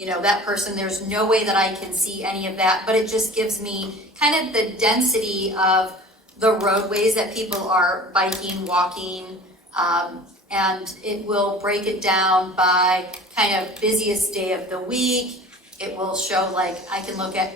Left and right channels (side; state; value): both; normal; correlation 0.42